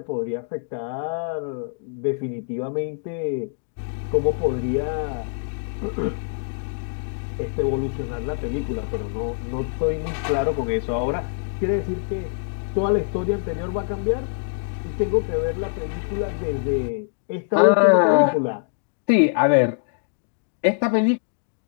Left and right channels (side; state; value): right; silent; digital silence